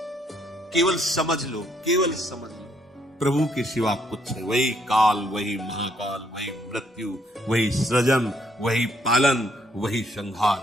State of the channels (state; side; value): normal; both; correlation 0.70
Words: केवल समझ लो, केवल समझ लो, प्रभु के सिवा कुछ है। वही काल, वही महाकाल, वही मृत्यु, वही सृजन, वही पालन, वही